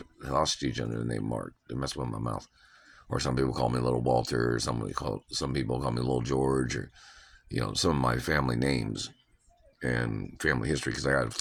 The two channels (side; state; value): both; identical; correlation 1.00